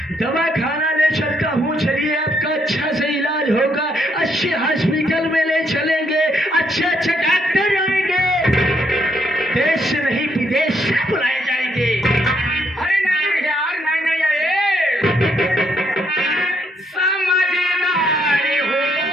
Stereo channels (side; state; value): both; normal; correlation 0.73